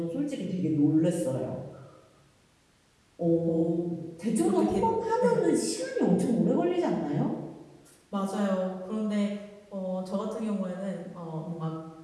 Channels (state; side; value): identical; both; correlation 1.00